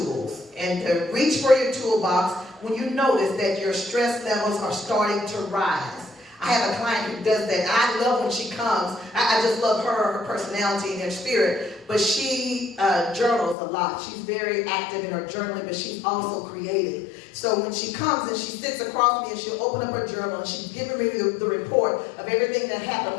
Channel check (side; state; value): right; drops out; at 13.6 s